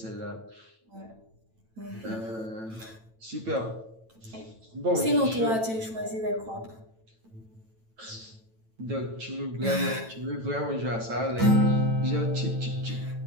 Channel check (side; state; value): left; late; 9.0 ms